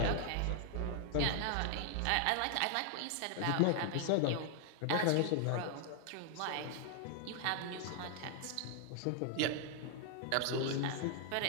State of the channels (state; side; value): different; both; correlation 0.00